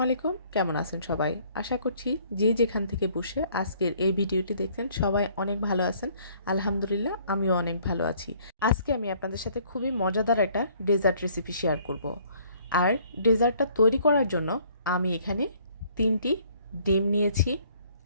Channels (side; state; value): both; inverted; correlation -0.60